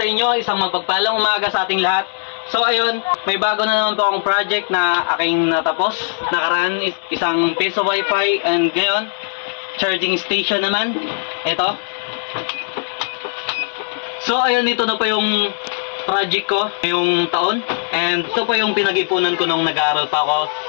inyo. Isang magpagpalang umaga sa ating lahat. So ayun, may bago na naman po akong project na aking natapos. Nakaraan isang piso wifi and ngayon, charging station naman. Ito. So ayun, ito na po yung project ko ngayong taon. And ito po yung pinag-ipunan ko nung nag-aaral pa ako.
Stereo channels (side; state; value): right; silent; digital silence